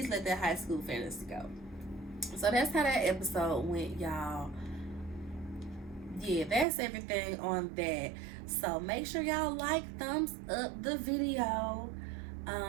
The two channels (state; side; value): drops out; left; at 6.7 s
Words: let that high school fantasy go. So that's how that episode went, y'all. Yeah, that's everything on that. So make sure y'all like, thumbs up the video.